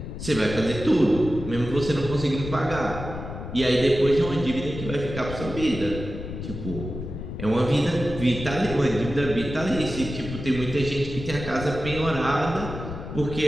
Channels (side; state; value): left; noise; rumble, 8 dB below the sound